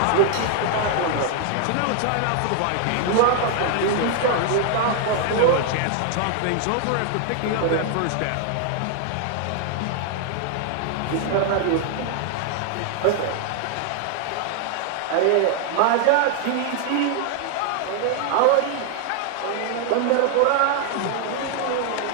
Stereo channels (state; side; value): different; both; correlation 0.00